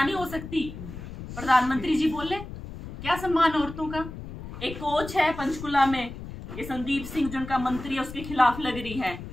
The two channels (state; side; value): noise; left; rumble, 11 dB below the sound